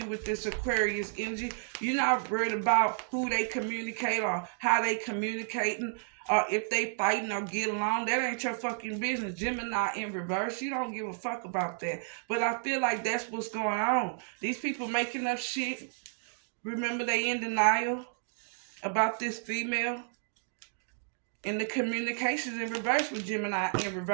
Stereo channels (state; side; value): silent; left; digital silence